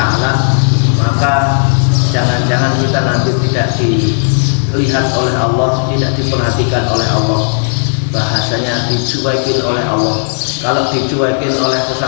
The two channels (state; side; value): silent; right; digital silence